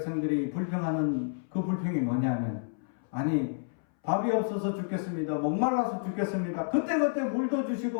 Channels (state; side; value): silent; right; 58 dB below the other